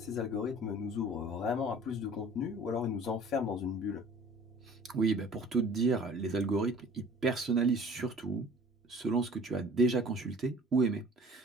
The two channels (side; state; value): both; normal; correlation 0.48